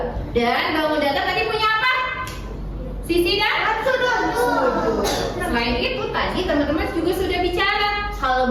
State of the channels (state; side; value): identical; both; correlation 1.00